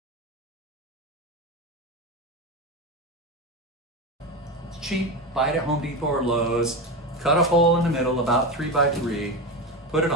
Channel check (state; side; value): normal; both; correlation 0.18